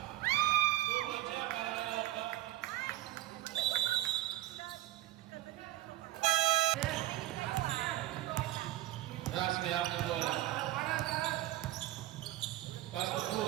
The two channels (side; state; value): left; quieter; 15.6 dB